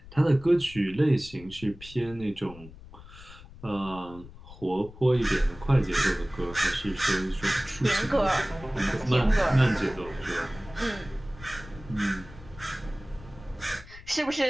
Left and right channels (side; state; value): left; noise; rumble, 18 dB below the sound